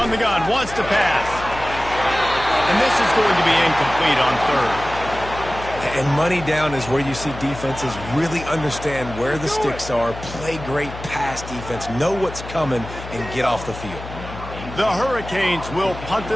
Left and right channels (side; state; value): left; noise; hum, 12 dB below the sound